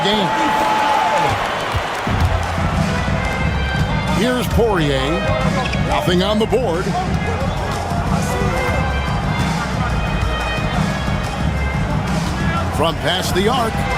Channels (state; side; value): identical; both; correlation 1.00